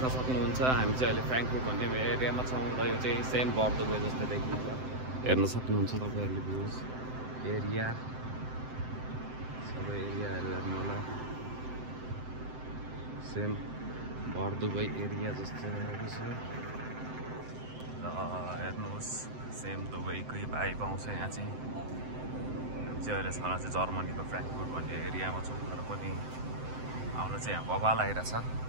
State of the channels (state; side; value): late; left; 7.8 ms